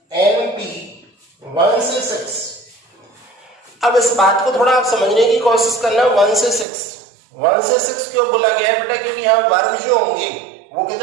NP 1 से 6। अब इस बात को थोड़ा आप समझने की कोशिश करना, 1 से 6 क्यों बोला गया है बेटा, क्योंकि यहाँ वर्ग जो होंगे वो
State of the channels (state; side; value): drops out; left; at 6.7 s